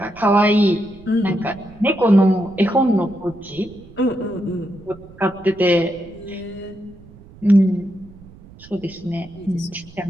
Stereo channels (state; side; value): noise; right; rumble, 21 dB below the sound